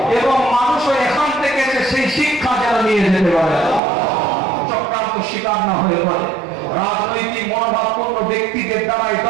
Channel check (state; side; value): drops out; left; at 3.8 s